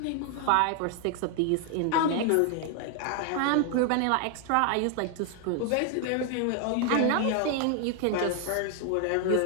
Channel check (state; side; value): different; both; correlation 0.00